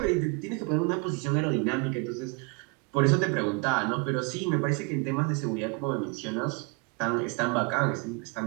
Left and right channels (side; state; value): left; quieter; 30.5 dB